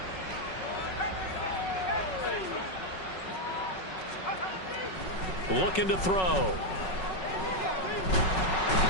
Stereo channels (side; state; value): right; late; 5.4 ms